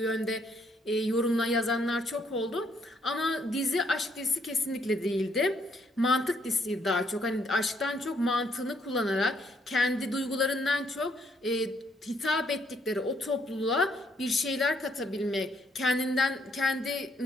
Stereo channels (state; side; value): normal; both; correlation 0.70